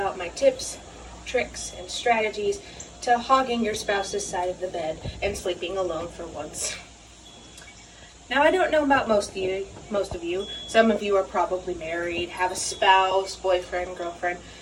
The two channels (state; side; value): identical; both; correlation 1.00